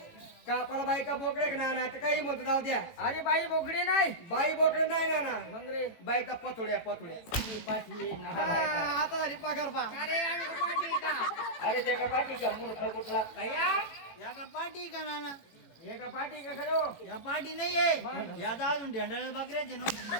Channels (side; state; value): right; late; 18 ms